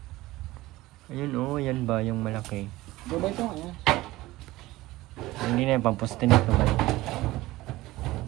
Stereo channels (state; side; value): quieter; left; 18.2 dB